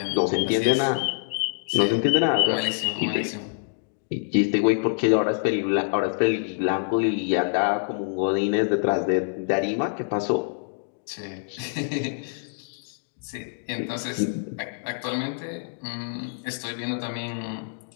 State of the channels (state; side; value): silent; right; digital silence